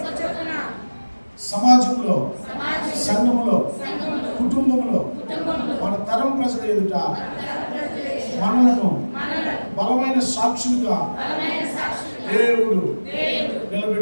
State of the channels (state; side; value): inverted; both; correlation -1.00